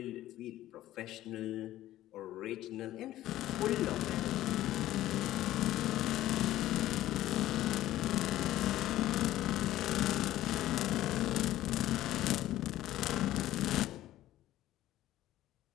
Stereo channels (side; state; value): right; quieter; 14.4 dB